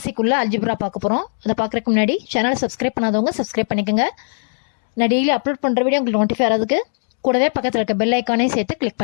குள்ள அல்ஜிப்ரா பார்க்க போறோம். அத பார்க்கறதுக்கு முன்னாடி சேனலை சப்ஸ்கிரைப் பண்ணாதவங்க சப்ஸ்கிரைப் பண்ணிக்கங்க. நான் டெய்லி அப்லோட் பண்ற வீடியோ உங்களுக்கு நோட்டிஃபை ஆகிறதுக்கு கூடவே பக்கத்துல இருக்க பெல் ஐகானையும் சேர்த்து கிளிக்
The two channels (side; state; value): right; silent; digital silence